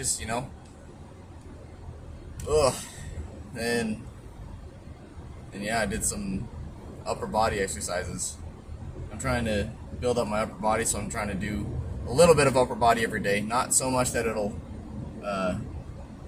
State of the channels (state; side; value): identical; both; correlation 1.00